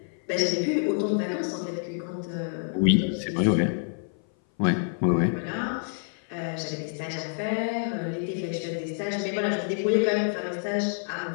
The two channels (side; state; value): right; silent; 57 dB below the other